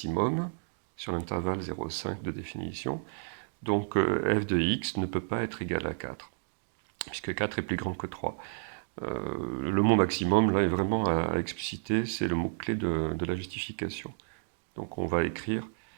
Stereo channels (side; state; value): left; silent; digital silence